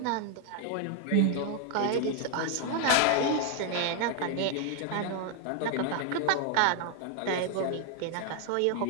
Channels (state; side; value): different; both; correlation 0.00